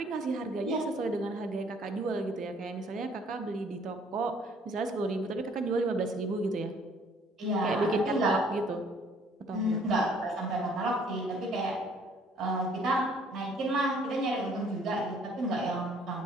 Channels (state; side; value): normal; both; correlation 0.60